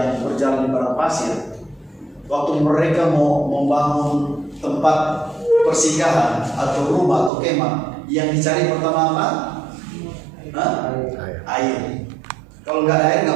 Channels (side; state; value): left; drops out; at 7.3 s